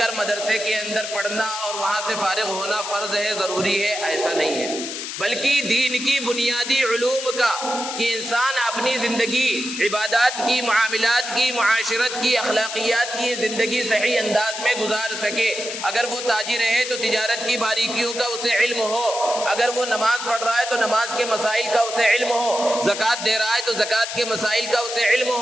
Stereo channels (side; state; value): left; noise; hiss, 6 dB below the sound